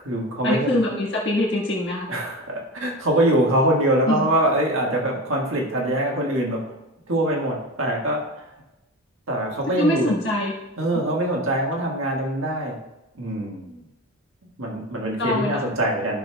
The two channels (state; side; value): normal; both; correlation 0.27